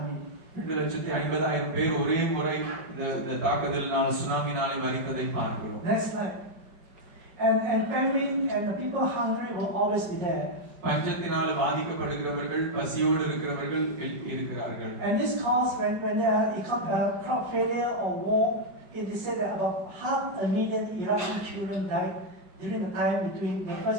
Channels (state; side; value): late; left; 5.6 ms